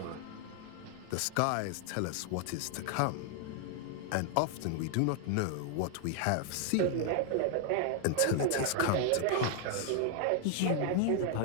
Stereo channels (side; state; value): both; different; correlation 0.00